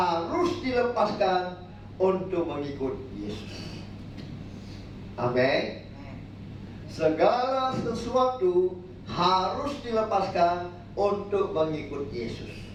dilepaskan untuk mengikut Yesus. Amin. Segala sesuatu harus dilepaskan untuk mengikut Yesus.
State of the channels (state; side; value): identical; both; correlation 1.00